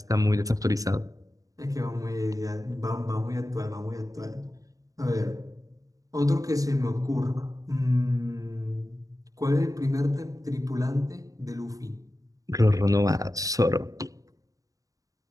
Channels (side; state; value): left; late; 0.17 ms